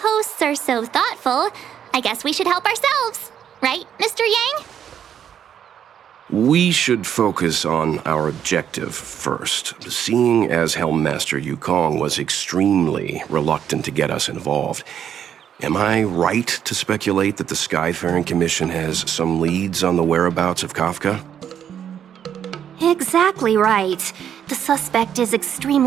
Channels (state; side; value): quieter; left; 9.1 dB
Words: hosts are so thoughtful, I guess we should help ourselves. Right, Mr. Yang? We should focus on our objective first. Seeing as Helmmaster Yukong was extremely reluctant to get us involved, am I right to speculate that the Skyfaring Commission has some leads on the whereabouts of Kafka? Exactly right. The suspect is